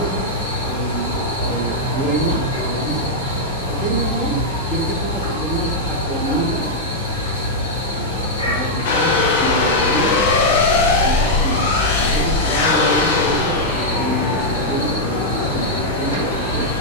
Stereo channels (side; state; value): both; normal; correlation -0.05